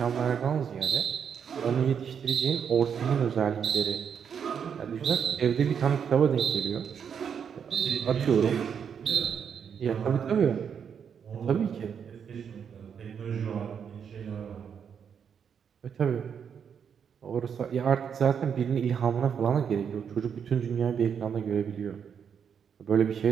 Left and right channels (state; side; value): quieter; left; 7.4 dB